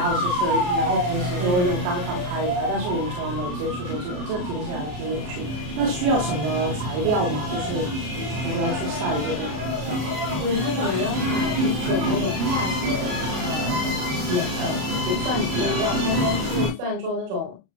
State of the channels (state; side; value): late; left; 34 ms